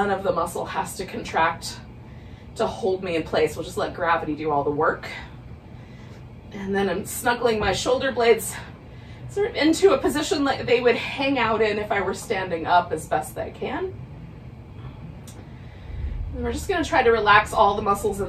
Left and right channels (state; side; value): identical; both; correlation 1.00